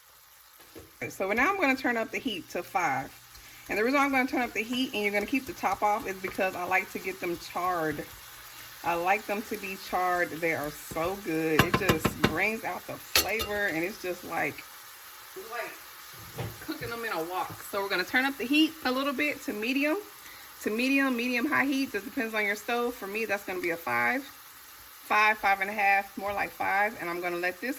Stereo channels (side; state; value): both; identical; correlation 1.00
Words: So now I'm going to turn up the heat to 5. And the reason I'm going to turn up the heat and you're going to keep the top off is because I like to get them charred. I like them to be charred. They are so good. It just brings out the flavor, and it's just like cooking them in a wok. So we're going to turn up the heat a little bit to medium, medium high heat. That depends on your stove. For me, that's going to be a 5, 5.5, more like 5. And I'm going to let this